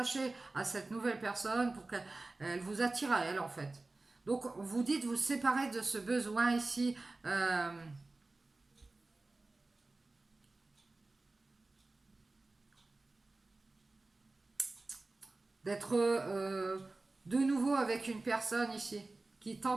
à cette nouvelle personne pour qu'elle vous attire à elle en fait. Donc vous dites vous séparer de ce besoin ici d'être de nouveau avec une personne ici qui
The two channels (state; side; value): quieter; left; 3.2 dB